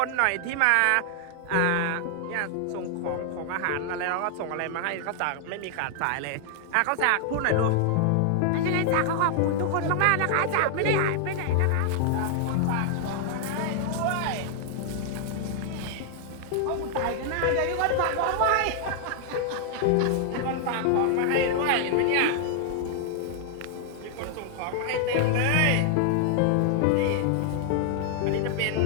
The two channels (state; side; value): different; both; correlation 0.00